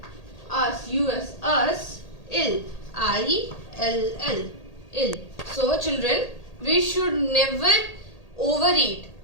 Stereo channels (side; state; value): right; late; 1.8 ms